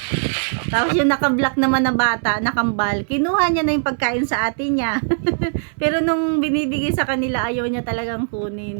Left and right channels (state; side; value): silent; left; 61 dB below the other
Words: Tapos yung naka-black naman na bata, nakambal, kinuha niya na yung pagkain sa ate niya. Pero nung binibigay sa kanila, ayaw niya talagang